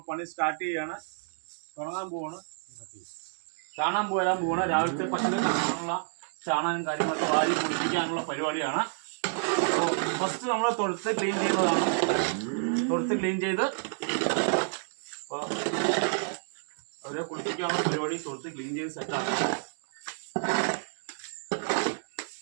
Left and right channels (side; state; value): left; silent; digital silence